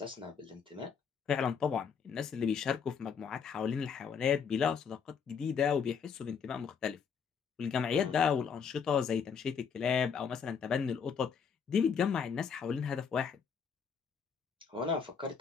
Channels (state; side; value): quieter; right; 6.6 dB